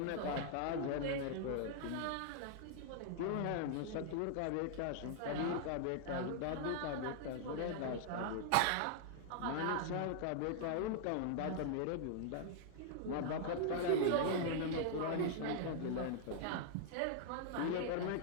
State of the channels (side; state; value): both; different; correlation -0.01